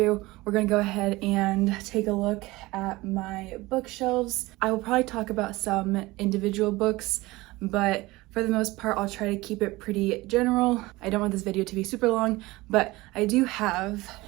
we're gonna go ahead and take a look at my bookshelves. I will probably talk about some individual books, but for the most part, I'll try to keep it pretty general. I don't want this video to be super long, but I do have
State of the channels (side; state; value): left; quieter; 20.5 dB